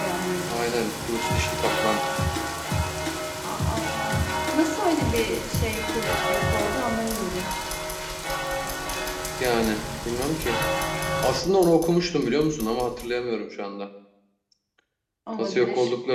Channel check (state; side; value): identical; both; correlation 1.00